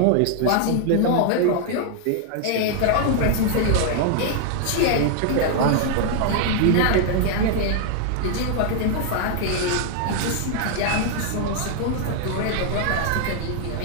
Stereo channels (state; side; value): different; both; correlation 0.00